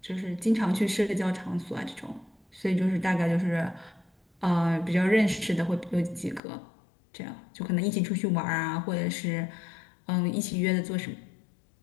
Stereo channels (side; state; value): right; drops out; at 6.4 s